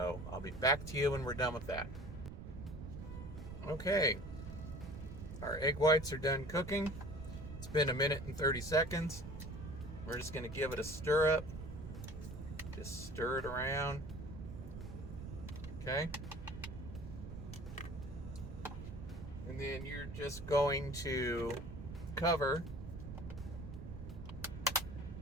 I'll be back to you when we're done with that. Okay, our egg whites are done cooking. It's been 1 minute and 30 seconds. We're just going to give it a stir up. Just stir it around. Okay. And then you're just going to cover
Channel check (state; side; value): noise; right; rumble, 9 dB below the sound